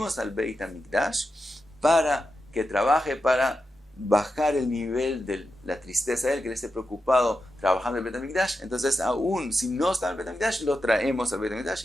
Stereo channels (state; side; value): normal; both; correlation 0.89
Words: al Beit HaMikdash para que trabaje, para bajar el nivel de la tristeza de él, que él esté preocupado trabajando en el Beit HaMikdash. Entonces, aún si no está en el Beit HaMikdash, lo traemos al Beit